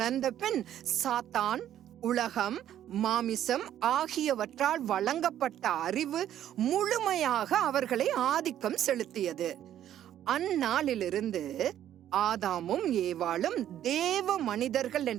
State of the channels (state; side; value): quieter; left; 11.3 dB